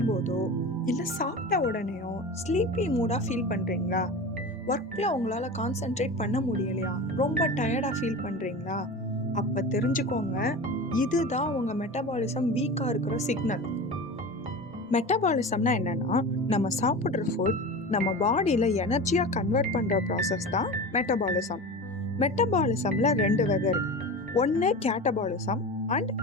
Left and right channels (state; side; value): normal; both; correlation 0.30